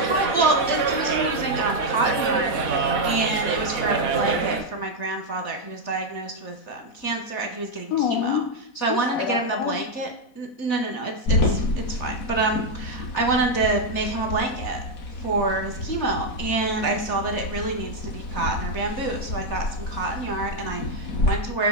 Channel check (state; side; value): late; right; 4.1 ms